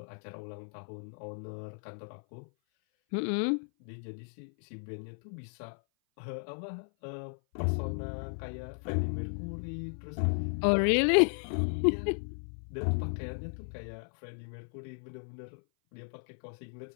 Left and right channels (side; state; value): right; silent; 55 dB below the other